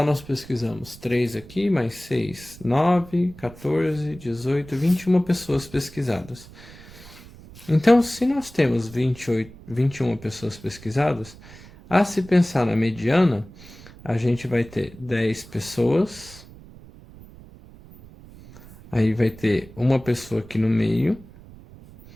nós pesquisamos 3 aqui, mais 6, 9, 14, 18, 21 pessoas pesquisadas. Então, se nós temos 21 pessoas pesquisadas, a se pensar na mediana, a gente vai ter 10 pessoas, aí vai ter uma pessoa aqui no meio,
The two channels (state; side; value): noise; right; rumble, 20 dB below the sound